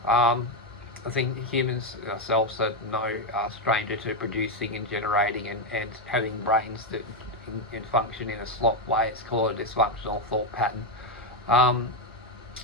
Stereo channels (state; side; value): normal; both; correlation 0.06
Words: I think humans ourselves are no stranger to producing and generating and having brains that can function in a slop way. It's called a dysfunctional thought pattern.